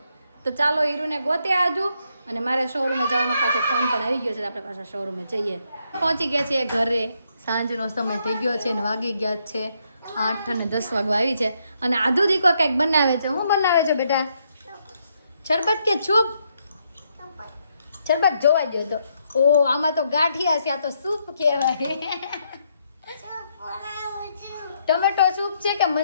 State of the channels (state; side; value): inverted; both; correlation -0.76